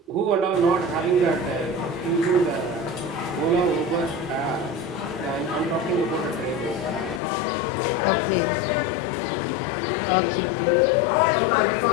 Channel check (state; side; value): drops out; right; at 7.2 s